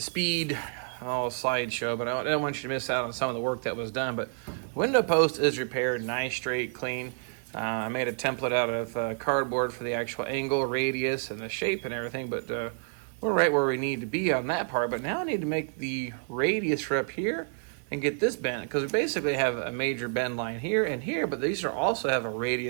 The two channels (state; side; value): silent; left; 58 dB below the other